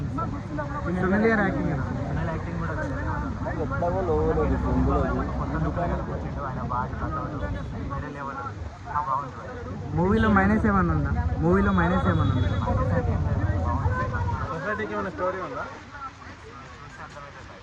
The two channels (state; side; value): identical; both; correlation 1.00